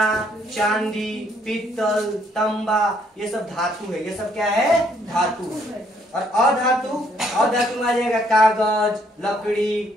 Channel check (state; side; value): normal; both; correlation 0.68